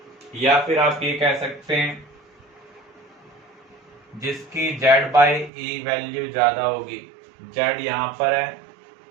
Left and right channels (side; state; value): left; drops out; at 5.5 s